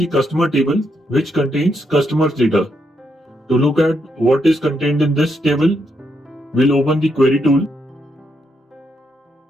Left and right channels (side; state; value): both; normal; correlation 0.79